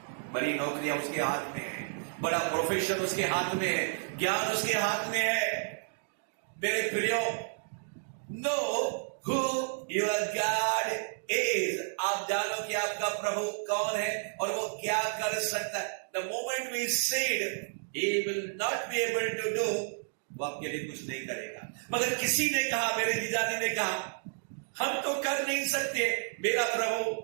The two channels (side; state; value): left; silent; digital silence